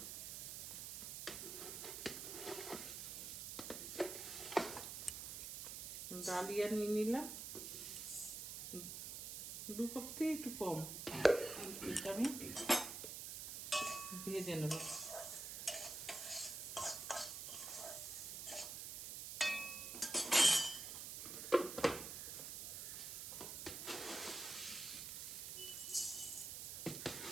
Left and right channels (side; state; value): right; noise; hiss, 6 dB below the sound